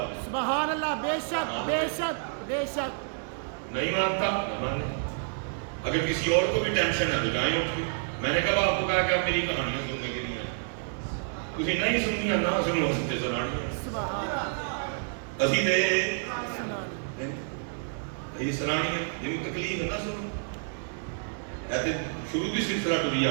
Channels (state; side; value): silent; left; 59 dB below the other